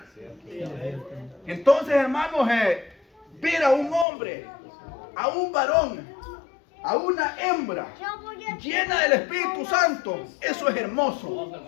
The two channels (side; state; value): right; drops out; at 4.0 s